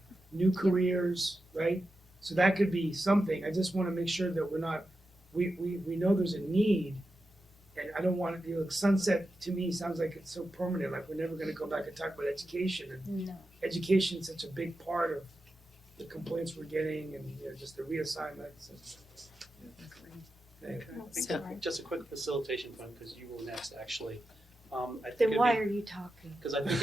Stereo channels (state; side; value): normal; both; correlation 0.90